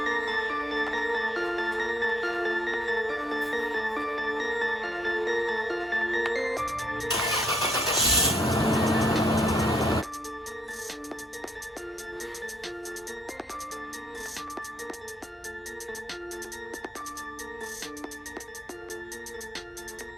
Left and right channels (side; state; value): both; normal; correlation 0.72